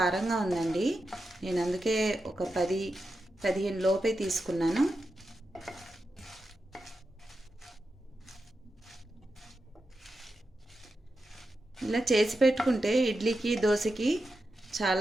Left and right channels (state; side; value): normal; both; correlation 0.89